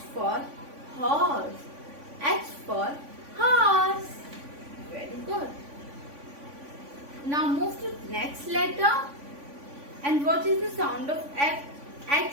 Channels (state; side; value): late; left; 3.5 ms